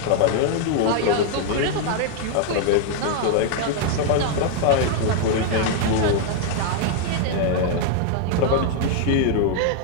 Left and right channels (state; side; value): different; both; correlation 0.00